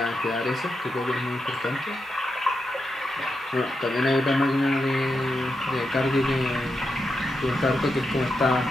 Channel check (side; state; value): both; normal; correlation 0.86